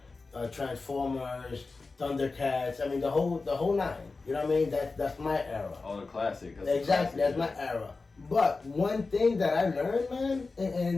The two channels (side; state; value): right; quieter; 3.9 dB